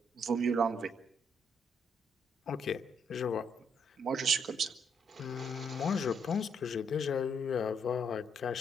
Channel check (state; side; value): normal; both; correlation 0.73